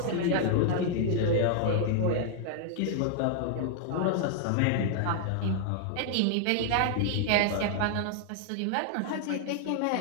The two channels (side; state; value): both; different; correlation 0.00